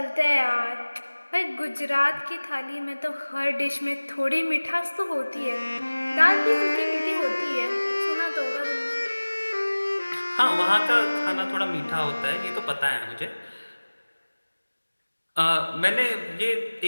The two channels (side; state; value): both; inverted; correlation -1.00